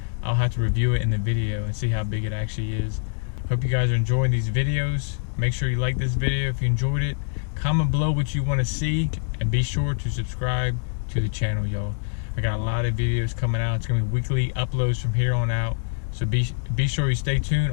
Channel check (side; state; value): right; silent; digital silence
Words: I'll have to review it in the video and see how big it actually is. Hope you guys are enjoying these videos. Make sure you like this video if you enjoyed it. Comment below what you want to see, and be sure to subscribe to the channel, y'all. I got a lot of videos coming out. It's gonna be weekly uploads from here on out, so be sure you stay tuned.